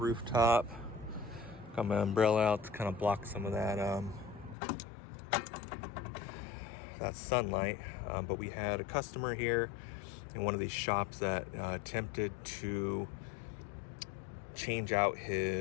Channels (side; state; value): right; drops out; at 4.5 s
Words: Got my umbrella out to kind of block some of that sunlight. But we had a customer here in one of these shops that attempted to change out